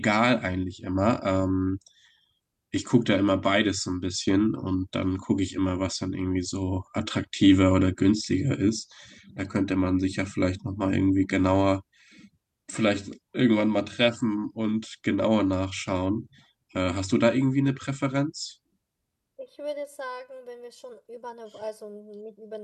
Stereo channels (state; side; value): identical; both; correlation 1.00